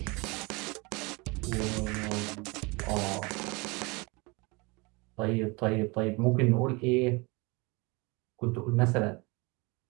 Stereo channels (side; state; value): left; quieter; 27.0 dB